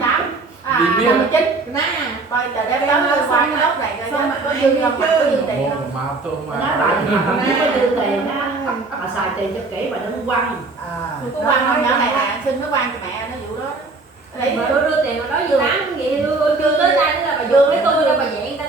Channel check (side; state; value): left; quieter; 3.6 dB